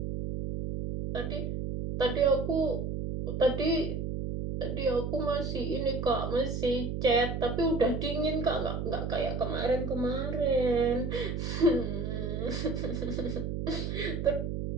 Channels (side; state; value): right; noise; hum, 3 dB below the sound